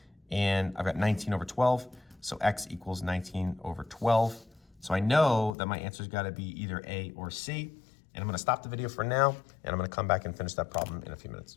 And I've got 19/12, so x equals 19/12. So I know that my answer's got to be either A or C. And I'm going to stop the video for now, and I'm going to come back and finish that problem in a few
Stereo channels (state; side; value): drops out; right; at 5.6 s